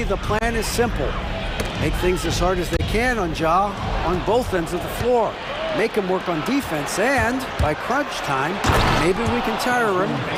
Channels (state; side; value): identical; both; correlation 1.00